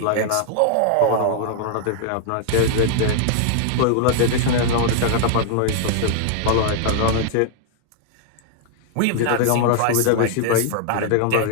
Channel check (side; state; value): both; different; correlation -0.01